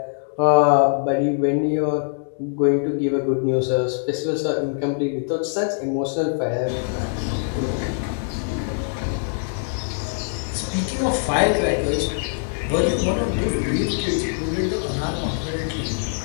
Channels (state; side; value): silent; right; digital silence